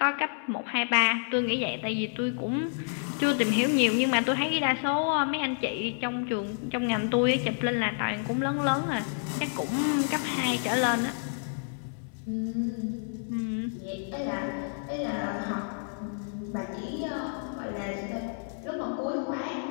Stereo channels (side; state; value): right; silent; 58 dB below the other